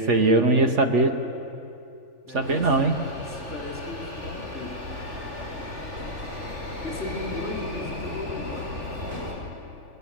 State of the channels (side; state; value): left; late; 3.4 ms